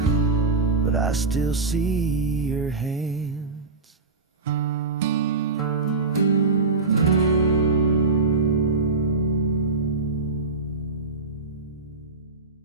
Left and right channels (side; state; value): left; quieter; 3.9 dB